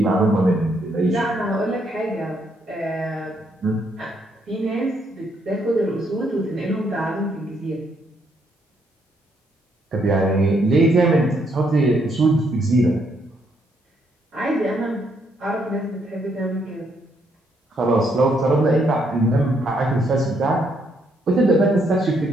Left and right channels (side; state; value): both; normal; correlation 0.73